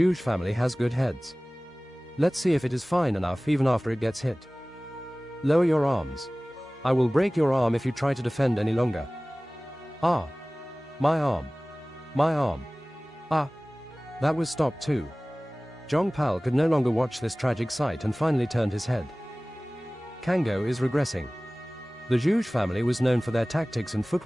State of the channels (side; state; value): both; normal; correlation 0.98